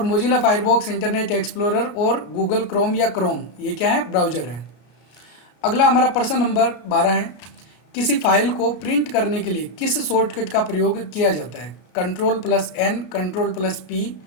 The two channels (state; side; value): late; right; 34 ms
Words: मोजिला फायरफॉक्स, इंटरनेट एक्सप्लोरर और गूगल क्रोम या क्रोम, ये क्या है, ब्राउज़र है। अगला हमारा प्रश्न नंबर 12 है, किसी फाइल को प्रिंट करने के लिए किस शॉर्टकट का प्रयोग किया जाता है, Ctrl+N, Ctrl+P,